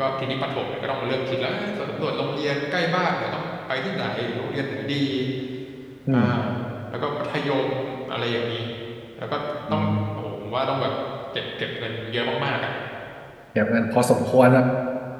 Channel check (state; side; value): identical; both; correlation 1.00